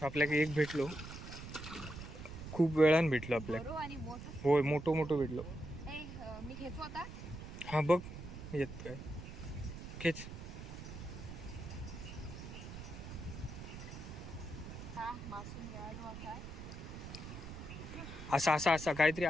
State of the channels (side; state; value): right; noise; rumble, 10 dB below the sound